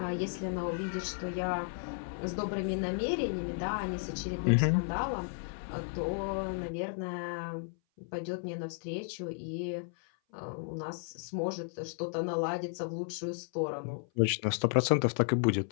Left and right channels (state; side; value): silent; right; 55 dB below the other